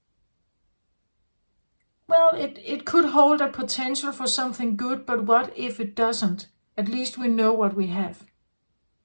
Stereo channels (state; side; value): inverted; both; correlation -1.00